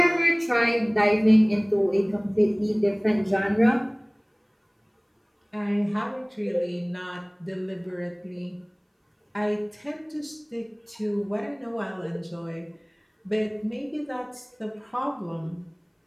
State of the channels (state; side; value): identical; both; correlation 1.00